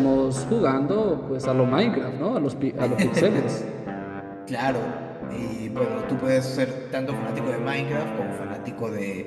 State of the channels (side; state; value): both; identical; correlation 1.00